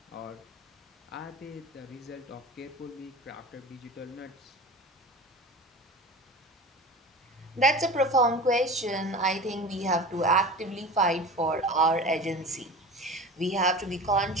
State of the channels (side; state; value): both; normal; correlation 0.34